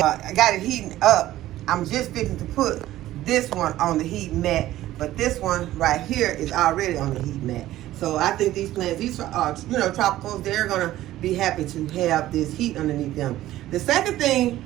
I got it heating up. I'm just fixing to put this one on the heat mat, but this one right here is already on the heat mat. So I think these plants, these are tropicals, they're going to be happy to have this heat underneath them. The second thing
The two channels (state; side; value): quieter; left; 14.7 dB